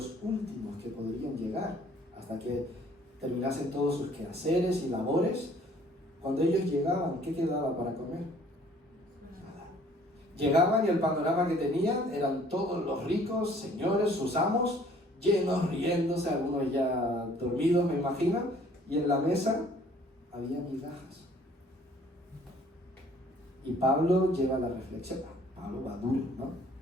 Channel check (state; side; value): normal; both; correlation 0.57